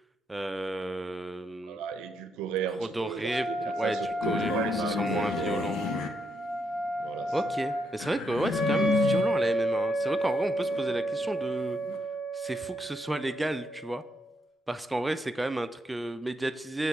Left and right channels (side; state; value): both; normal; correlation 0.79